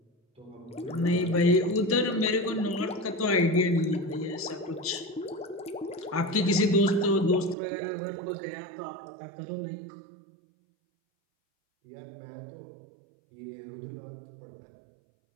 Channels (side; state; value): left; drops out; at 7.6 s